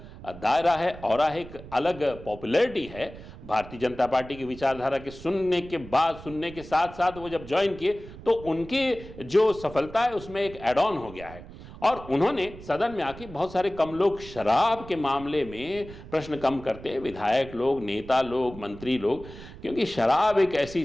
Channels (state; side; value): noise; right; rumble, 16 dB below the sound